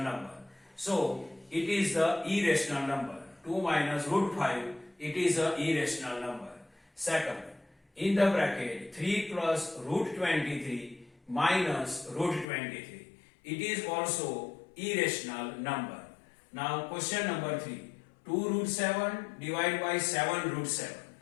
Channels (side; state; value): right; drops out; at 12.5 s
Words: number. So it is the irrational number. 2 minus root 5, it is a irrational number. Second, in the bracket 3 plus root 23 minus root 23, it is also irrational number. Now question number 3, 2 root 7 divided by 7 root 7.